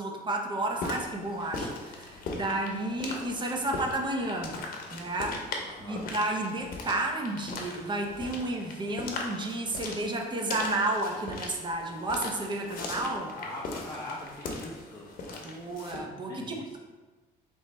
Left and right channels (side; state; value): both; normal; correlation 0.24